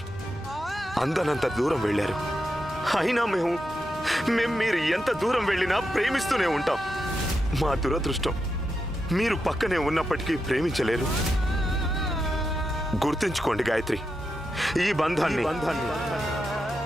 అందనంత దూరం వెళ్ళారు. అయినా మేము మీరు ఎంత దూరం వెళ్ళినా ప్రేమిస్తూనే ఉంటాం. మా దురదృష్టం మీరు పక్కనే ఉన్నప్పటికీ ప్రేమించలేరు. గుర్తుంచుకోండి గాయత్రి, ఈ బంధాన్ని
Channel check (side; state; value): both; normal; correlation 0.86